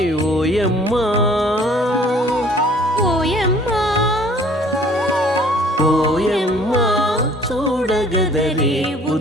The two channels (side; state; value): both; normal; correlation 0.55